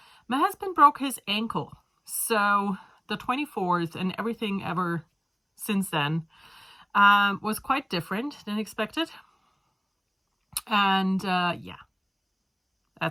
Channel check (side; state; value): both; identical; correlation 1.00